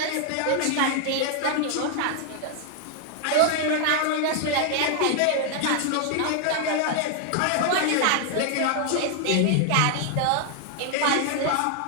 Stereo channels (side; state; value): both; different; correlation 0.00